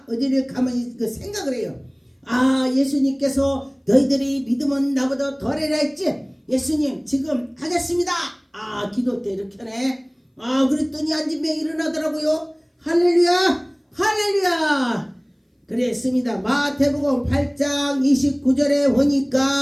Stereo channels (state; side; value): identical; both; correlation 1.00